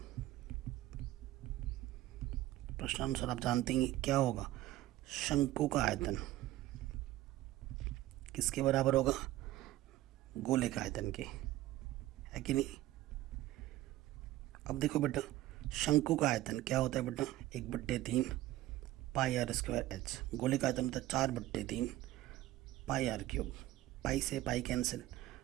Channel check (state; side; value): quieter; left; 15.4 dB